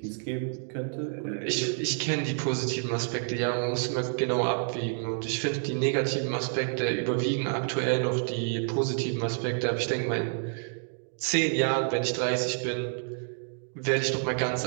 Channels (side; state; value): left; silent; 59 dB below the other